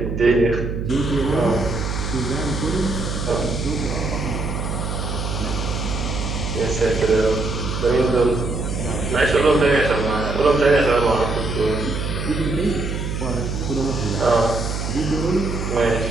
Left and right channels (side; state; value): right; noise; hum, 3 dB below the sound